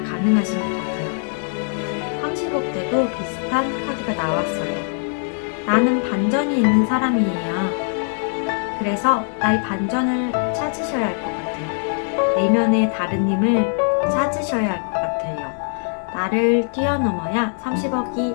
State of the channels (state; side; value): silent; right; 63 dB below the other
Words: 것 같아요. 30억 때도 비슷한 카드가 나왔어요. 나는 반전이 있는 사람이에요. 그래서 나의 반전을 찾으셔야 할 것 같아요. 내면의 다른 힘을 찾으셔야 할 것 같아요. 나를 뛰어넘어야